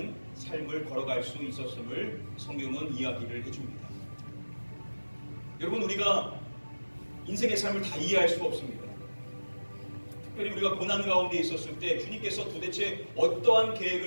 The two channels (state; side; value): inverted; both; correlation -1.00